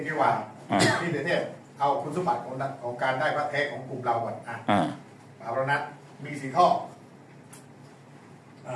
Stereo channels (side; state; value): both; identical; correlation 1.00